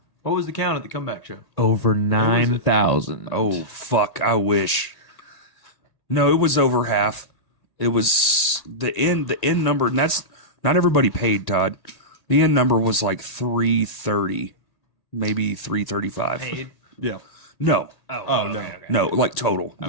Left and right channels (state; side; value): late; right; 1.8 ms